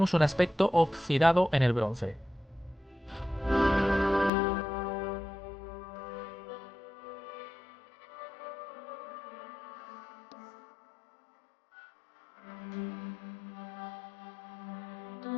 un aspecto oxidado en el bronce.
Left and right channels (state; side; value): drops out; right; at 4.3 s